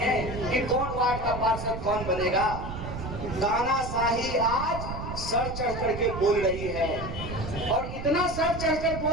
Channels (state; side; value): noise; right; rumble, 7 dB below the sound